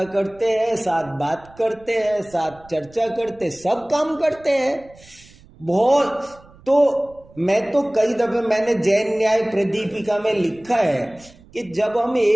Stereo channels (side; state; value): right; noise; rumble, 25 dB below the sound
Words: करते हैं, साथ बात करते हैं, साथ चर्चा करते, सब काम करते हैं बहुत। तो मैं तो कई दफे मैंने जैन न्याय प्रदीपिका में लिखा है कि जब हम